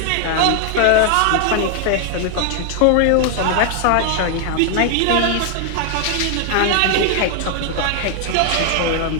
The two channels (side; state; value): both; different; correlation 0.00